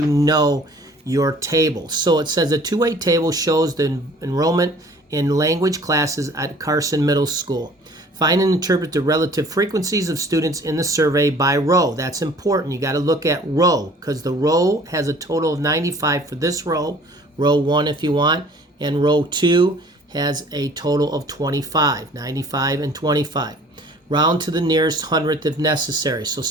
know your table. So it says a two-way table shows the enrollment in language classes at Carson Middle School. Find and interpret the relative frequencies of students in the survey by row. That's important. You got to look at row because the row has a total of 95 for this row 1 if you want, and row 2 has a total of 25, 95 and 25. Round to the nearest hundredth if necessary. So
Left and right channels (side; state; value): both; normal; correlation 0.51